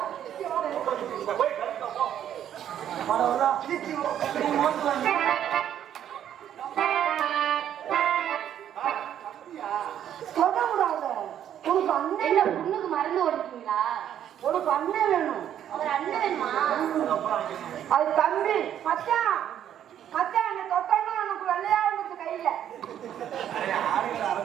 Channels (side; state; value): left; quieter; 10.3 dB